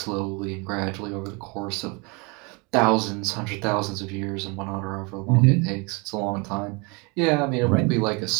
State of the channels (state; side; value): quieter; left; 29.8 dB